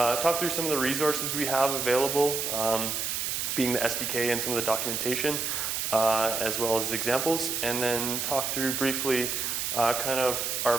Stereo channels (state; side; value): noise; right; hiss, 1 dB below the sound